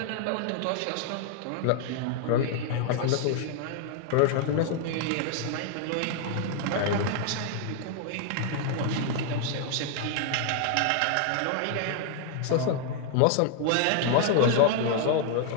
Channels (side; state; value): both; different; correlation 0.00